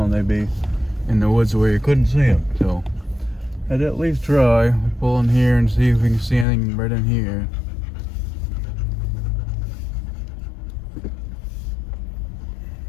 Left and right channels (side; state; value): right; drops out; at 6.5 s